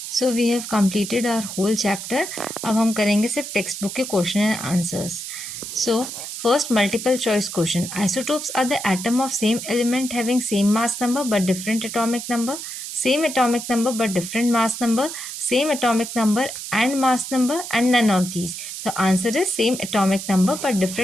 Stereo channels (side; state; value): right; noise; hiss, 8 dB below the sound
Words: So we have completed our whole chapter. अब हम करेंगे सिर्फ टेक्स्ट बुक के question and answers. So first multiple choice question, isotopes are the atom of same element having same mass number but different atomic number, same atomic number but different mass number, same atomic number and mass number, and none of these. The answer is same atomic number but